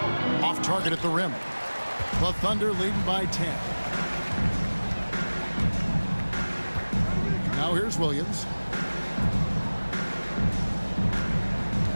Off target at the rim. The Thunder leading by 10. Now here's Williams.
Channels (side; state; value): both; inverted; correlation -1.00